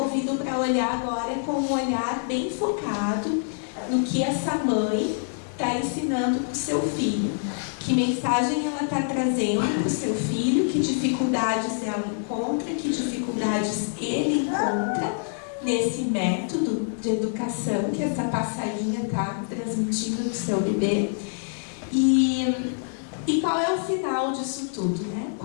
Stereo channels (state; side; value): silent; right; digital silence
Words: para olhar agora com um olhar bem focado no que essa mãe está ensinando para o seu filho. Que mensagem ela está trazendo para o seu filho, que dificuldades ela encontra, que dificuldades ele encontra nesse método de educação que essa passarinha está transmitindo no seu bebê. E qual é o final disso tudo,